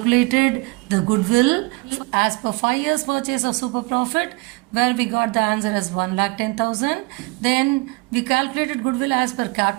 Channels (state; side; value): quieter; left; 26.8 dB